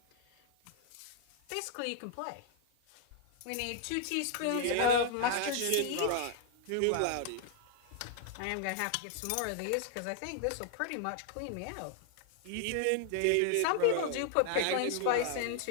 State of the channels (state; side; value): different; both; correlation 0.00